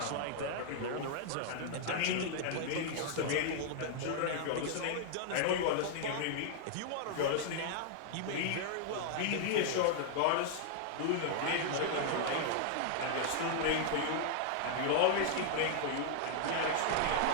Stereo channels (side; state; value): both; different; correlation -0.01